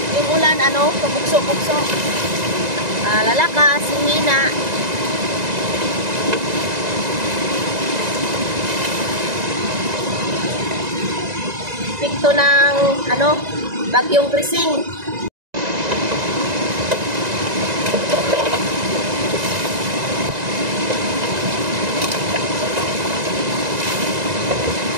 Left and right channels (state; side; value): late; left; 1.9 ms